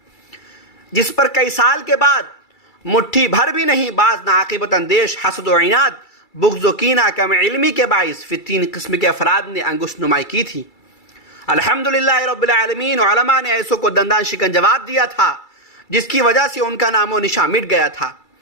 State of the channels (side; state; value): right; late; 2.3 ms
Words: جس پر کئی سال کے بعد مٹھی بھر بھی نہیں بعض ناعاقبت اندیش حسد و عناد، بغض و کینہ، کم علمی کے باعث فی تین قسم کے افراد نے انگشت نمائی کی تھی۔ الحمدللہ رب العالمین، علماء نے ایسوں کو دندان شکن جواب دیا تھا جس کی وجہ سے ان کا نام و نشان مٹ گیا تھا۔